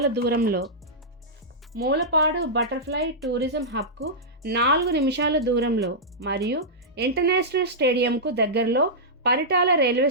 దూరంలో, మూలపాడు బటర్ఫ్లై టూరిజం హబ్కు 4 నిమిషాల దూరంలో మరియు ఇంటర్నేషనల్ స్టేడియంకు దగ్గరలో పరిటాల రైల్వే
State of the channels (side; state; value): both; normal; correlation -0.12